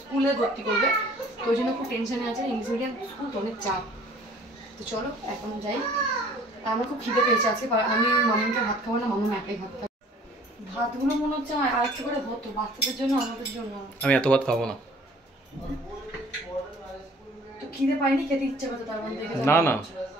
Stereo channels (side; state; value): both; normal; correlation 0.53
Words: স্কুলে ভর্তি করবে, তো ওই জন্য খুব টেনশনে আছে, ইংলিশ মিডিয়াম স্কুল তো অনেক চাপ। তো চলো এখন যাই, আমার খুব খিদে পেয়েছে আজকে, আমি মামুনকে ভাত খাবো না, মামুন একাই ভাত খাবো। ভাতগুলো মনে হচ্ছে আমার আরেকটু করে হতো, বাচ্চাদের জন্য আমাদের জন্য। আমি এত ভাত খাবো না। তো খিদে পাইনি, খেতে ইচ্ছে করতো তার মধ্যে দেখে। না না,